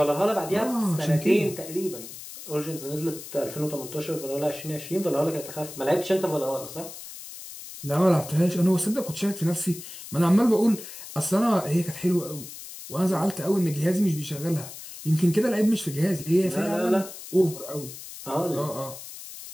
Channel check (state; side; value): noise; left; hiss, 13 dB below the sound